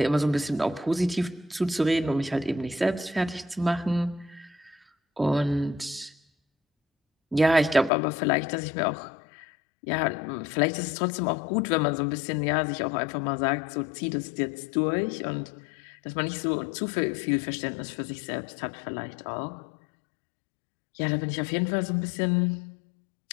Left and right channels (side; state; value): right; drops out; at 7.9 s